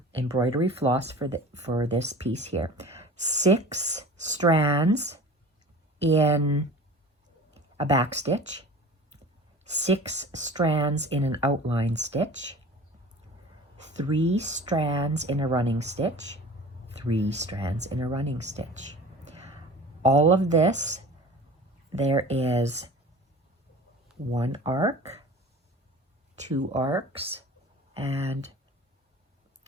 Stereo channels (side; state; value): both; normal; correlation 0.40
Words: embroidery floss for this piece here. 6 strands in a back stitch, 6 strands in an outline stitch, 3 strands in a running stitch, 3 strands in a running stitch. All of this, there is 1 arc, 2 arcs, and